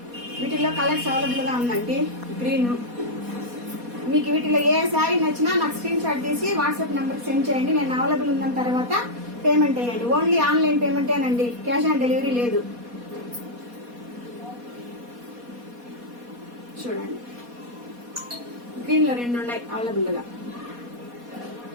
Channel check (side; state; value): left; late; 4.2 ms